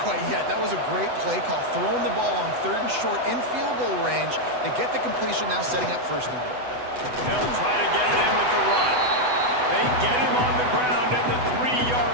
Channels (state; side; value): late; left; 8.0 ms